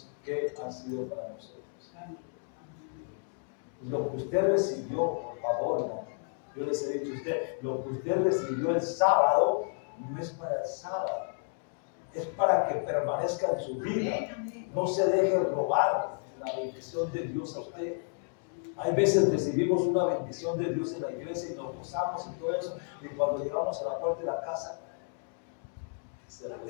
qué han sido para nosotros. Lo que usted recibió, por favor, no. Yo les he dicho a usted, lo que usted recibió el sábado, no es para el sábado, es para que permanezca en su vida. No se deje robar la bendición de Dios a usted. Hay veces recibimos una bendición de Dios en la iglesia y nos gozamos y todo eso, y cuando llegamos a la puerta de la casa se la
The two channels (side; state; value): right; silent; 57 dB below the other